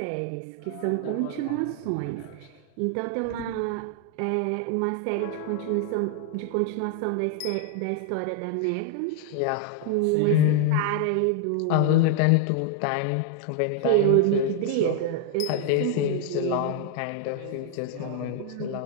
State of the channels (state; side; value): different; both; correlation 0.00